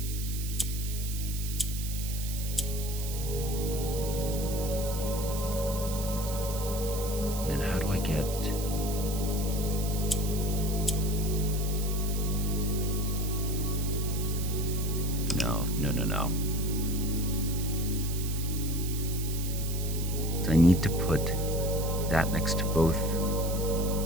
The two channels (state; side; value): noise; right; hiss, 8 dB below the sound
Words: Then how do I get... No. So I need to put that next to both